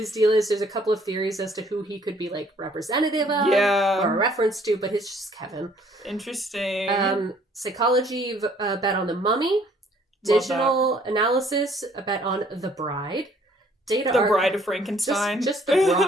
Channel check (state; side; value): normal; both; correlation 0.60